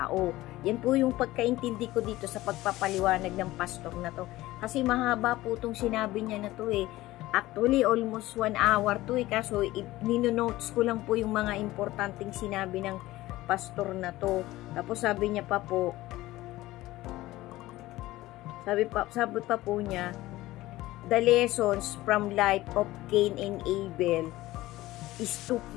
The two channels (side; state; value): right; quieter; 17.3 dB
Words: Yan po yung pagkaintindi ko dito sa pagpapaliwanag ng pastor na to. Kasi mahaba po itong sinabi niya na to Actually, almost 1 hour to kaso nino-notes ko lang po yung mga importanteng sinabi ng pastor na to. Tapos sabi niya pa po, sabi pa po niya, the lessons from life of Cain and Abel is